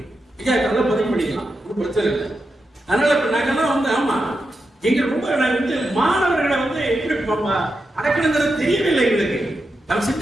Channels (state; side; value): normal; both; correlation 0.88